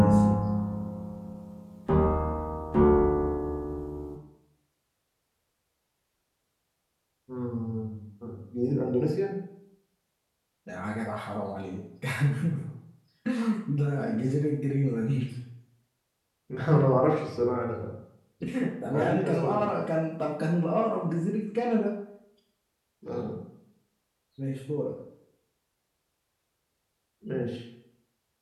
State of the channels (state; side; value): identical; both; correlation 1.00